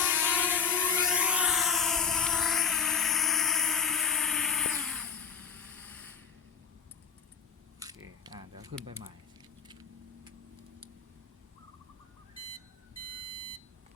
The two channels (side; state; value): right; quieter; 6.4 dB